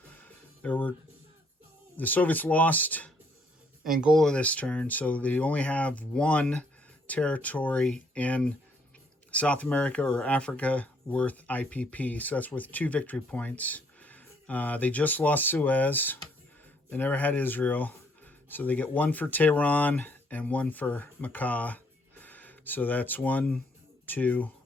The Soviets lost Angola this turn, so they only have 1 territory in South America or Africa worth IPP, so that's worth 2 victory points. They just lost Suez. They never had Israel, so they get 1 for Tehran and 1 for Makkah. So that's 1, 2,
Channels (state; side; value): normal; both; correlation 0.67